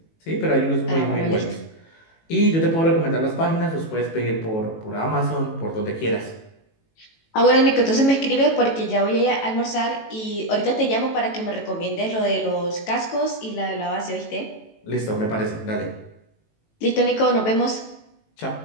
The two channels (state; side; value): late; right; 18 ms